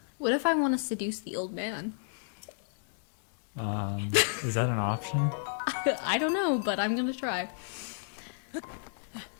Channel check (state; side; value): silent; right; digital silence